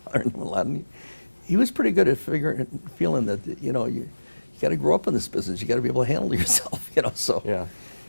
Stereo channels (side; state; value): both; inverted; correlation -1.00